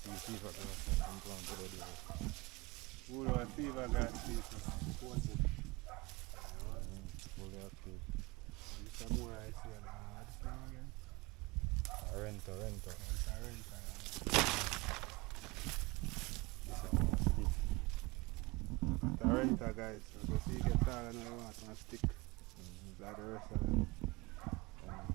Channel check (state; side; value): quieter; left; 23.3 dB